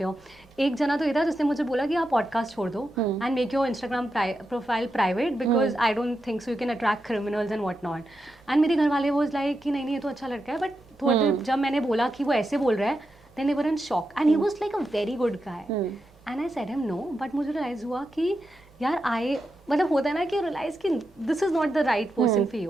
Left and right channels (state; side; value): normal; both; correlation 0.87